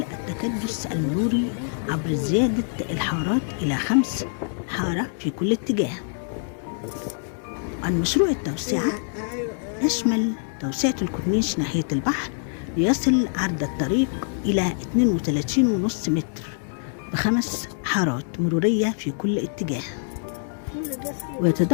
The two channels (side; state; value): right; silent; 60 dB below the other